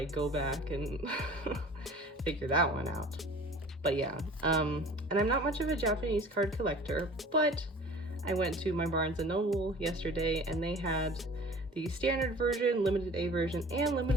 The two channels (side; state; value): both; normal; correlation 0.45